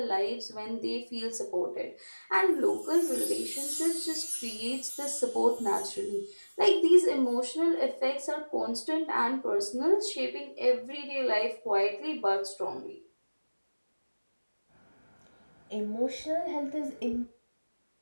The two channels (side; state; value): both; inverted; correlation -1.00